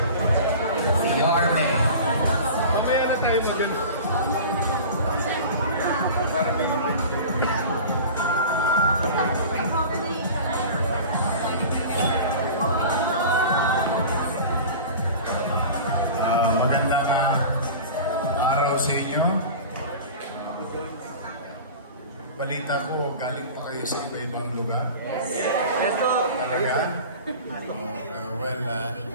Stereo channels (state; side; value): inverted; both; correlation -0.36